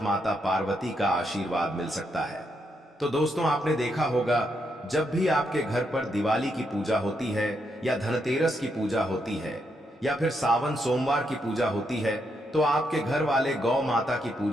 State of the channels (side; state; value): both; normal; correlation 0.79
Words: माता पार्वती का आशीर्वाद मिल सकता है। तो दोस्तों, आपने देखा होगा जब भी आपके घर पर दिवाली की पूजा होती है या धनतेरस की पूजा होती है या फिर सावन सोमवार की पूजा होती है तो आपके घर वाले गौ माता की